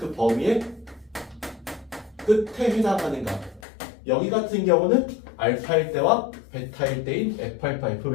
범위의 끝에 해당하는 값. 여기 같은 경우는 알파일 때와 베타일 때인 f알파,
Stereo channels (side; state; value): right; drops out; at 3.6 s